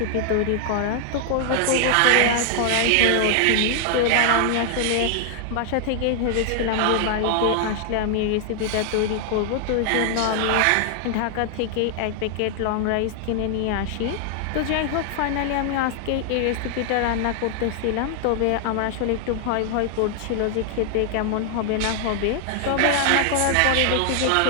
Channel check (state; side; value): different; both; correlation 0.00